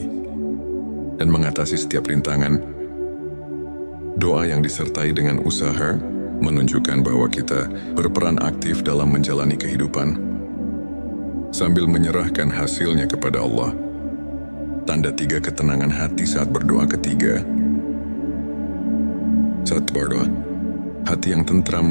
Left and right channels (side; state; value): both; inverted; correlation -1.00